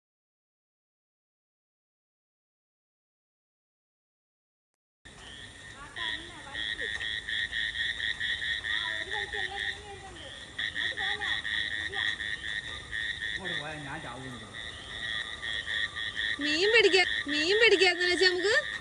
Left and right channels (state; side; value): identical; both; correlation 1.00